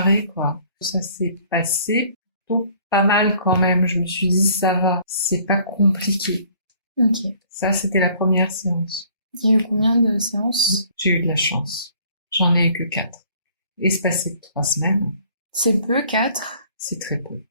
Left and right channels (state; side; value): inverted; both; correlation -0.56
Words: quoi. Ça s'est passé plutôt pas mal quand même. Je me suis dit, ça va, c'est pas compliqué. Ok. Ça, c'était la première séance. Il y a eu combien de séances? J'ai eu de la chance. J'en ai eu que 4. Espacé 3 semaines. C'est peu, 4? C'est très peu.